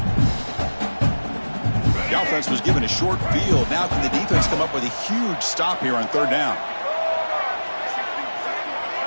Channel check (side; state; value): both; inverted; correlation -1.00